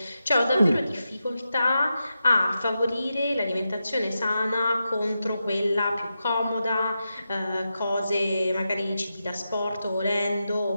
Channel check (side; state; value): both; inverted; correlation -0.89